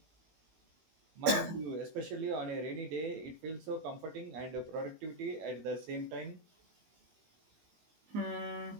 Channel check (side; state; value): left; late; 19 ms